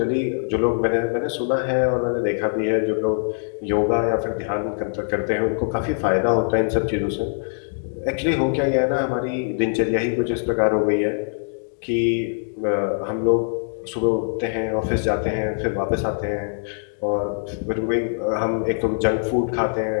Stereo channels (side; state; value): right; silent; digital silence